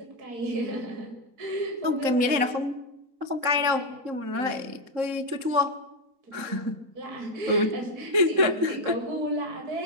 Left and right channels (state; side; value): late; left; 3.7 ms